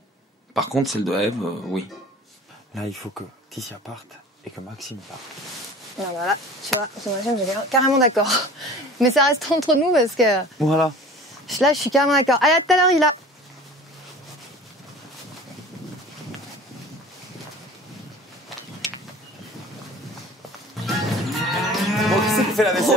Par contre, celle de Ève, oui. Là, il faut que Ticia parte et que Maxime parte. Alors voilà, tu vois, ce machin, j'ai carrément d'accord. Mais ça reste entre nous parce que Voilà. là, je suis carrément d'accord. Allez, à tout à l'heure, il a. Bon, qui c'est qui fait la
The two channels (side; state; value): both; normal; correlation 0.42